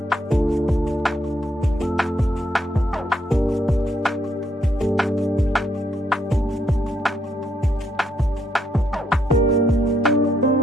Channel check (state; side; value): normal; both; correlation 0.75